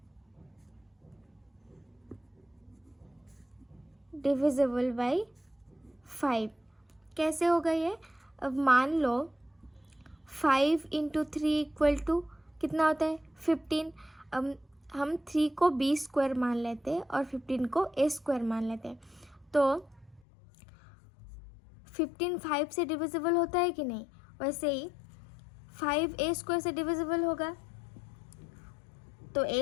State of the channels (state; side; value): drops out; right; at 20.2 s